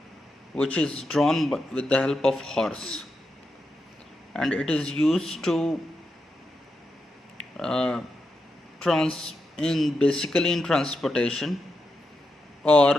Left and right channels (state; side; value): normal; both; correlation 0.86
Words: which is drawn with the help of horse. And it is used to uh, basically in transportation,